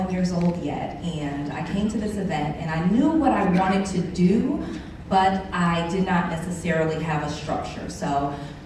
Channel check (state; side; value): identical; both; correlation 1.00